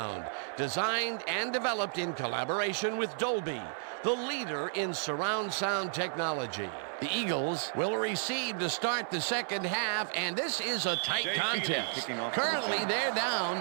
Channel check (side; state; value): left; silent; 56 dB below the other